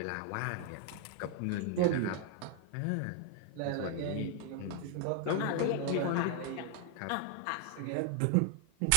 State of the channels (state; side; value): different; both; correlation 0.00